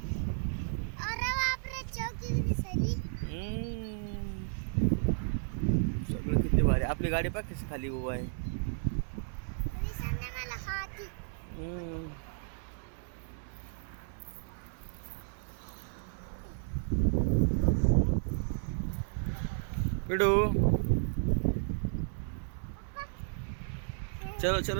सगळं किती भारी. आपली गाडी पाह कशी खाली उभा आहे. पिडू चलो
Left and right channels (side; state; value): left; silent; 56 dB below the other